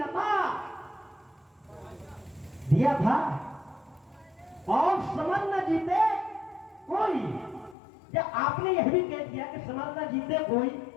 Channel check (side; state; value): right; drops out; at 7.8 s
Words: दिया था, और समर न जीते कोई। या आपने यह भी कह दिया कि समर न जीते कोई,